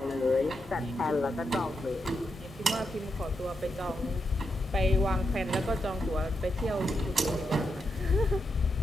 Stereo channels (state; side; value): normal; both; correlation 0.85